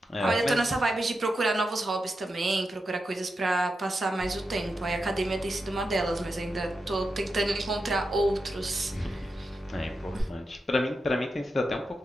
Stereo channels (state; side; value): normal; both; correlation 0.88